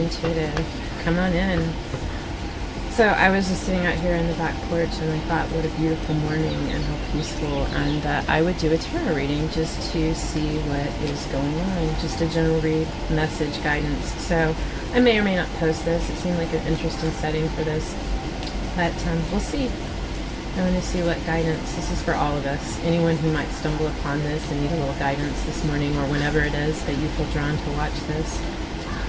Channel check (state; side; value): identical; both; correlation 1.00